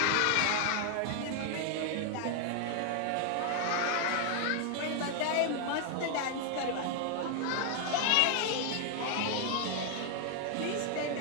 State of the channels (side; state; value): both; different; correlation 0.00